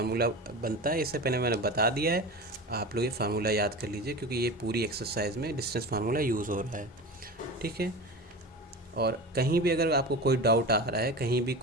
बनता है। इससे पहले मैंने बता दिया है, आप लोग ये फार्मूला याद कर लीजिए क्योंकि ये पूरी एक्सरसाइज में डिस्टेंस फार्मूला यूज़ हो रहा है, ठीक है। और कहीं भी अगर आपको कोई डाउट आ रहा है कहीं भी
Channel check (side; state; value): both; normal; correlation 0.30